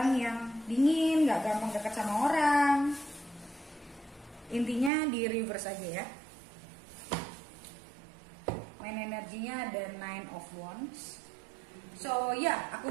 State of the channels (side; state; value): left; drops out; at 4.9 s